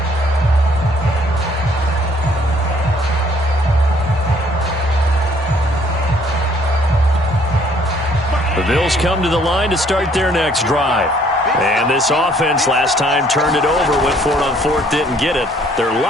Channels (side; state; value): both; normal; correlation 0.62